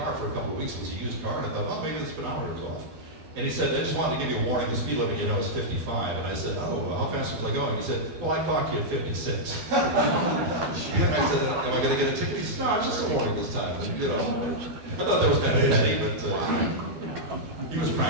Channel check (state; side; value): late; left; 13 ms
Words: for a couple of weeks. It was a used car, and I thought, well, maybe the speedometer's off. And he said, I just wanted to give you a warning, the speed limit, you know, is 55. And I said, oh, how fast was I going? He said, well, I clocked you at 56. And I said, am I going to get a ticket? He said, no, it's just a warning this time. And, you know, I thought that was kind of petty, but he was